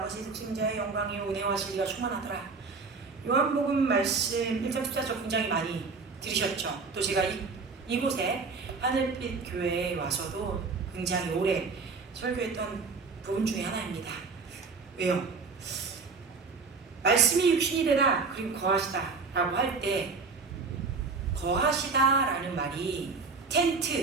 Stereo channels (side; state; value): left; quieter; 4.5 dB